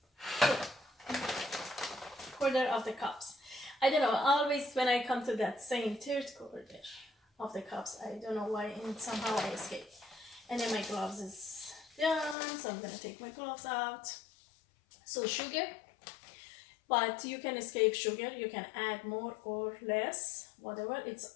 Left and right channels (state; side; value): drops out; right; at 12.4 s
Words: quarter of the cups. I don't know, always when I come to that same 3/4 of the cups, I don't know why, and somehow I escape. And then my gloves is done, so I'm gonna take my gloves out. So sugar, but you can escape sugar, you can add more or less, whatever, it's